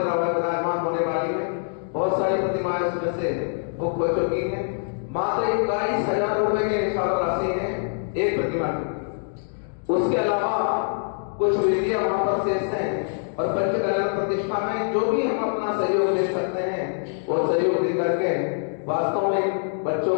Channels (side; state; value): right; silent; digital silence